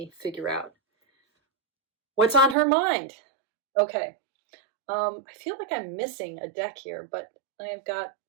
figure out what's on her mind. Okay. I feel like I'm missing a deck here, but I've got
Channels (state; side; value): drops out; left; at 2.6 s